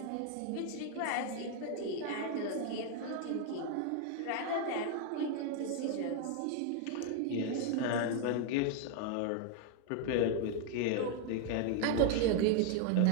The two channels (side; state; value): both; different; correlation 0.01